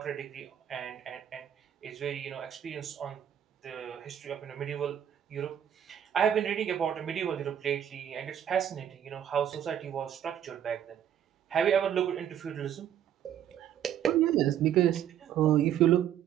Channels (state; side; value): quieter; left; 9.9 dB